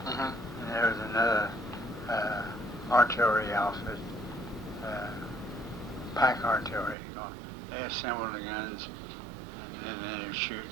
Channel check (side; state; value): left; drops out; at 7.0 s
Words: And there was another artillery outfit, pack artillery. They assembled the guns and then they would shoot.